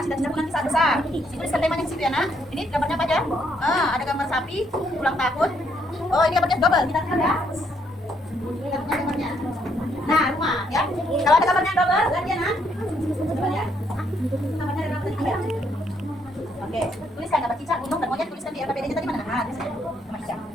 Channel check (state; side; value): normal; both; correlation 0.72